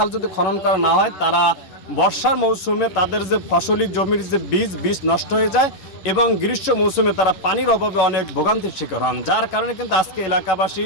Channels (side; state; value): right; late; 11 ms